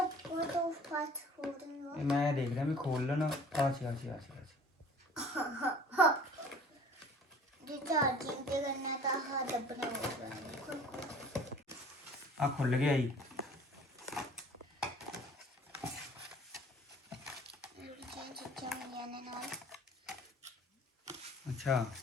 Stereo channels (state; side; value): normal; both; correlation 0.48